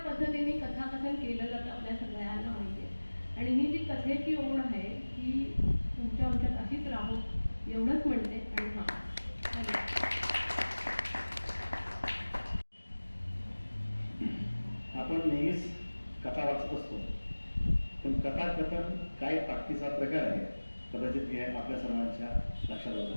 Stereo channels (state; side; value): inverted; both; correlation -1.00